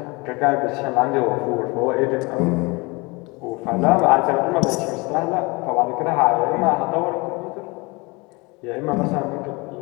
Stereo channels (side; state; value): right; quieter; 26.2 dB